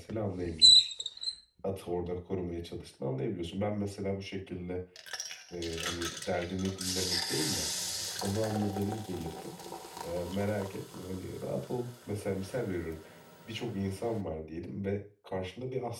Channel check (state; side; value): identical; both; correlation 1.00